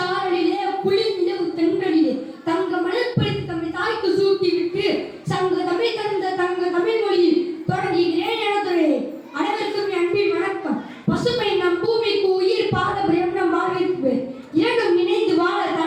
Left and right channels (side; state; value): both; identical; correlation 1.00